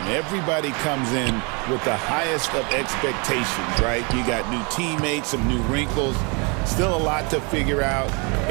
Everybody comes in with the highest of expectations, right? You got new teammates, some new wrinkles, still a lot to figure out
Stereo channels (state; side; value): quieter; left; 32.1 dB